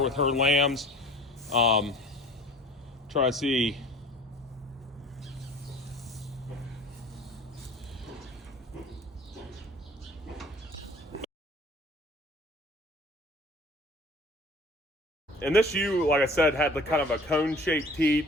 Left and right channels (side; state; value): both; normal; correlation 0.46